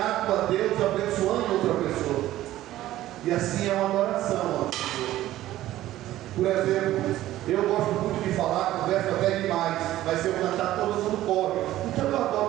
a Deus, abençoando outra pessoa. E assim é uma adoração ao Senhor. Por exemplo, eu gosto muito de falar, converso até demais, mas se eu cantar todo mundo corre. Então eu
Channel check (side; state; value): left; quieter; 14.5 dB